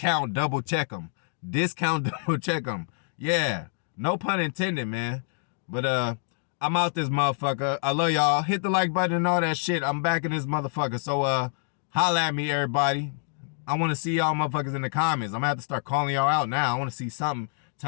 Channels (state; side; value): silent; right; digital silence